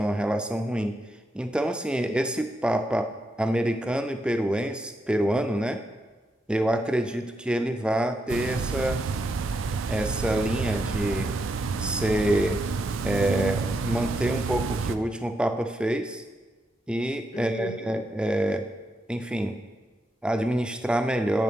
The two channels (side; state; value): both; normal; correlation 0.82